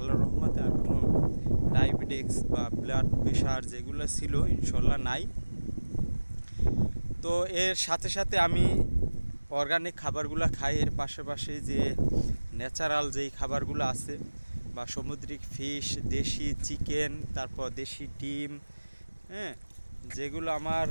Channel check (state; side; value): inverted; both; correlation -1.00